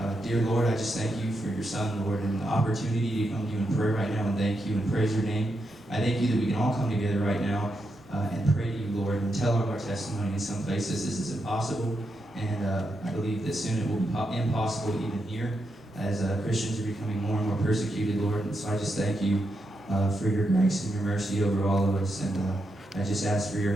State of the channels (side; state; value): both; normal; correlation 0.84